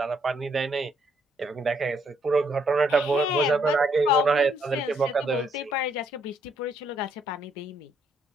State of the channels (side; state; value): both; normal; correlation 0.71